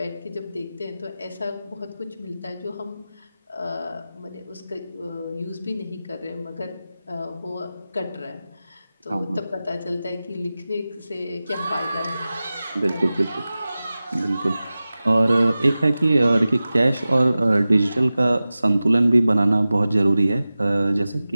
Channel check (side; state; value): both; inverted; correlation -0.96